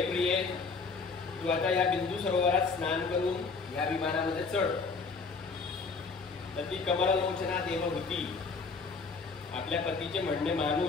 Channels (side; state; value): right; quieter; 4.5 dB